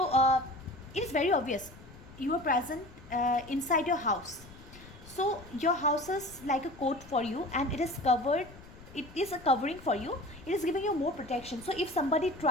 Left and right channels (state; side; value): noise; left; rumble, 19 dB below the sound